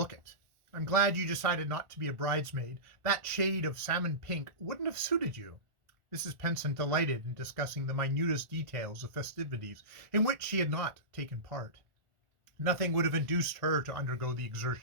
it. I'm glad you decided not to be a bridesmaid. That shade of salmon pink wouldn't have suited you." Mrs. Penson delighted in discussing the minutest details of festivities in which she had not taken part. Nothing would have induced her to undergo the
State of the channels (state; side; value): late; left; 1.4 ms